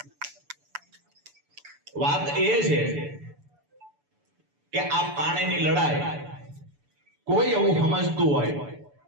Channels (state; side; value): late; left; 6.9 ms